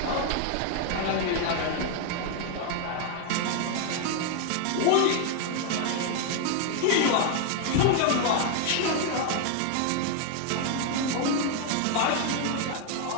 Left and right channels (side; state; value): both; different; correlation 0.00